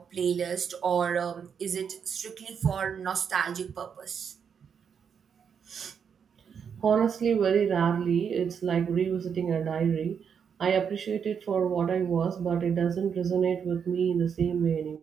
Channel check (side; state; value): left; quieter; 7.1 dB